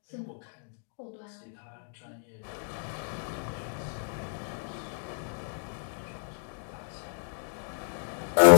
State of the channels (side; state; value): right; silent; 58 dB below the other